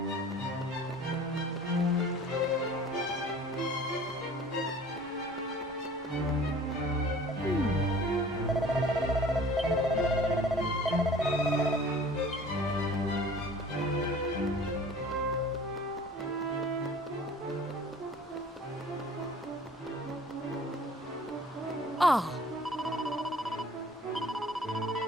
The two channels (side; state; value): both; normal; correlation 0.47